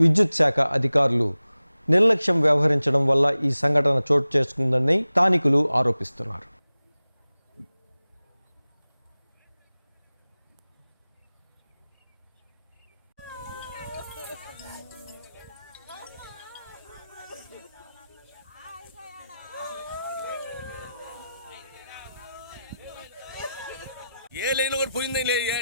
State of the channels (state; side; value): inverted; both; correlation -0.95